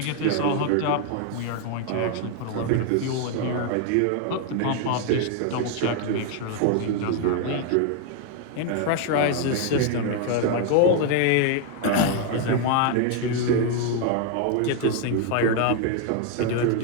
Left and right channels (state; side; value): different; both; correlation 0.00